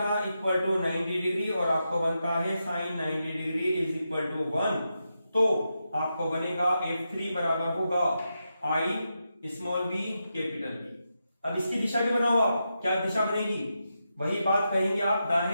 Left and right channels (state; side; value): inverted; both; correlation -0.87